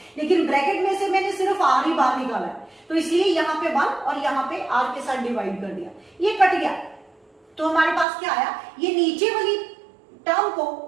लेकिन ब्रैकेट में से मैंने सिर्फ आर ही बाहर निकाला है, तो इसलिए यहाँ पे 1 और यहाँ पे आर के साथ डिवाइड कर दिया, ये कट गया, तो हमारे पास क्या आया, ये नीचे वाली टर्म को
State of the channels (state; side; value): drops out; left; at 8.1 s